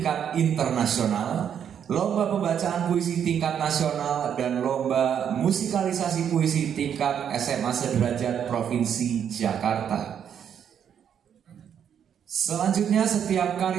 Internasional, Lomba Pembacaan Puisi Tingkat Nasional, dan Lomba Musikalisasi Puisi Tingkat SMA Sederajat Provinsi Jakarta. Selanjutnya, setiap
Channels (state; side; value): quieter; left; 8.6 dB